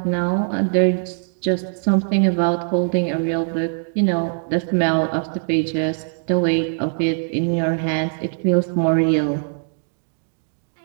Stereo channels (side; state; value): left; silent; 65 dB below the other